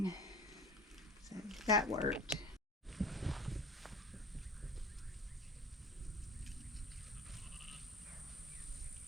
So that worked.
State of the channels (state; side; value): normal; both; correlation 0.37